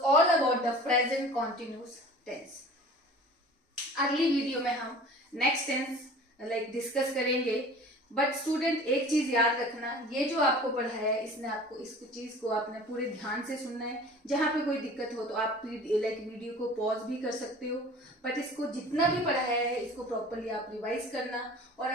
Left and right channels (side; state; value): both; normal; correlation 0.43